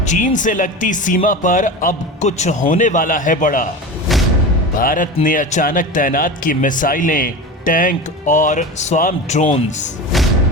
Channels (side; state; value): both; normal; correlation 0.28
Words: चीन से लगती सीमा पर अब कुछ होने वाला है बड़ा। भारत ने अचानक तैनात की मिसाइलें, टैंक और स्वार्म ड्रोन्स।